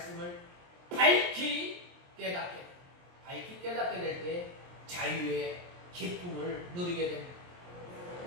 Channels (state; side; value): late; left; 23 ms